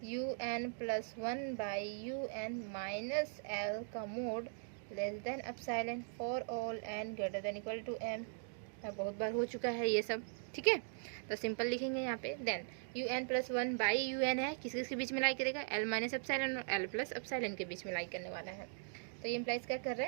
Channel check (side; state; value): left; silent; digital silence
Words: un plus 1 by un minus L का mod less than epsilon for all n greater than equal to m। बहुत बार हो चुका है ये सब, ठीक है। तो सिंपल लिखेंगे यहाँ पे। Then un plus 1 by un है, किस किस के बीच में लाई करेगा, l माइनस एप्सिलॉन और l प्लस एप्सिलॉन के बीच में लाई करने वाला है। तो ये इम्प्लाइज क्या कर रहा